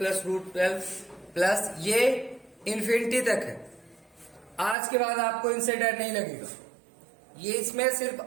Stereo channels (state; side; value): drops out; left; at 4.8 s